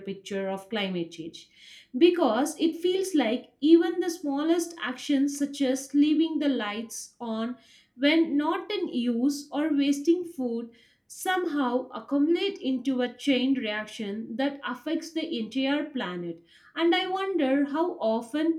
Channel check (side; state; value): both; identical; correlation 1.00